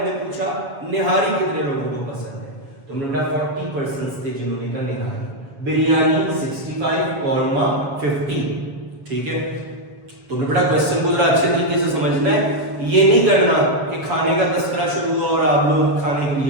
पूछा निहारी कितने लोगों को पसंद है, तो हमने बेटा 40% थे जिन्होंने कहा निहारी। बिरयानी 65, कौरमा 50। ठीक है, तो बेटा क्वेश्चन को जरा अच्छे तरीके से समझना है, ये नहीं करना कि खाने का तस्करा शुरू हुआ और आप लोग खाने के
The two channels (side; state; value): left; late; 7.2 ms